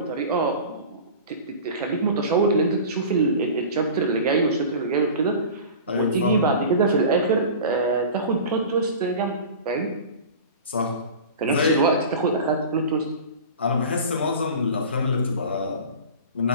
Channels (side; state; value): both; inverted; correlation -0.36